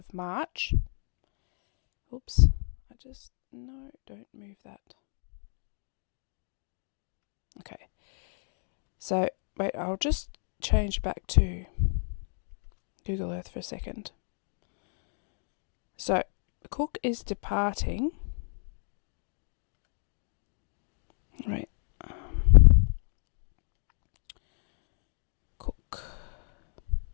March. Oops. No, don't move that. Okay. So, wait, I'll just change back to Google Earth for a second. So, Cook is departing. Right. Cook.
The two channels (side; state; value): right; silent; 55 dB below the other